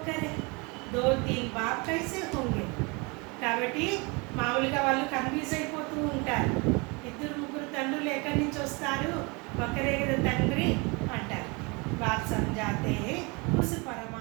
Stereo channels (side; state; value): left; quieter; 28.7 dB